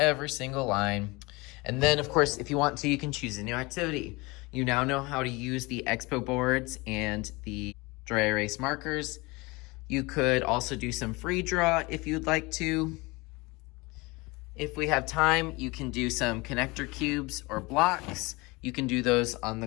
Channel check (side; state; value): right; quieter; 24.5 dB